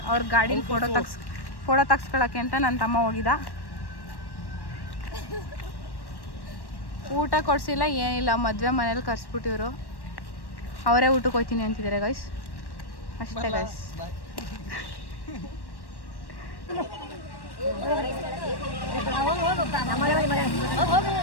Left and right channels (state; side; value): late; right; 1.1 ms